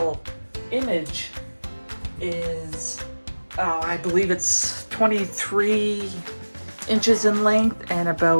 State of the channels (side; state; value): both; inverted; correlation -1.00